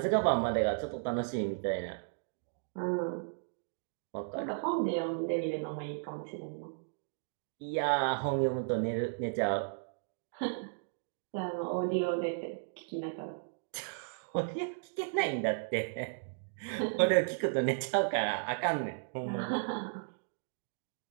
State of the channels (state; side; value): silent; left; digital silence